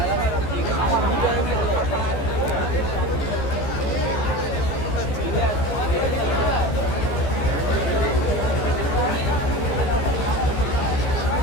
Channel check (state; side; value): late; right; 15 ms